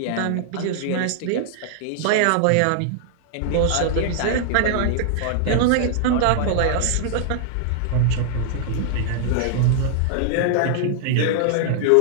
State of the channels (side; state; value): both; different; correlation -0.01